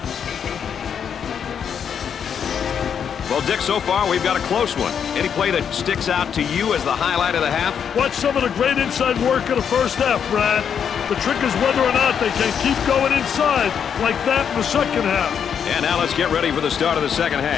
Well, Dick, so far we've got a close one. Any play that sticks out to you as the highlight of the half? Watch some of the great inside work in the first half, Brad. The trick is whether or not they can keep going inside like that in the second half. And now let's get ready for the start of the second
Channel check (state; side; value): quieter; right; 7.7 dB